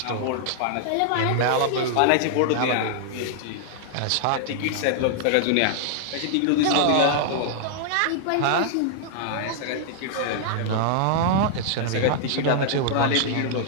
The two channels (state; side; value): different; both; correlation -0.01